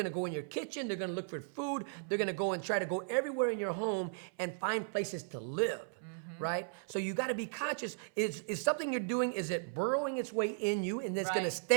to go in your kitchen, they're going to look for food, they're going to go and try to go everywhere in your home and find places to live, right? So you got to be conscious. Is something you're doing, is it burrowing its way in you and it's going to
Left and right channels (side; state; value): left; silent; 54 dB below the other